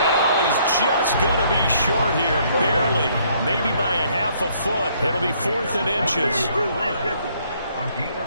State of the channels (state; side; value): inverted; both; correlation -0.66